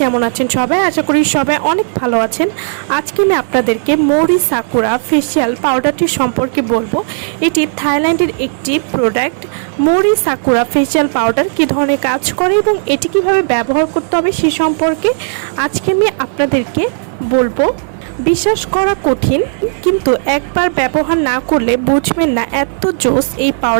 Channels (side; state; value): left; silent; digital silence